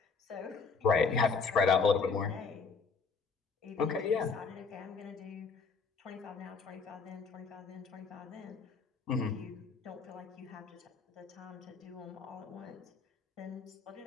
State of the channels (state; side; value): quieter; right; 4.9 dB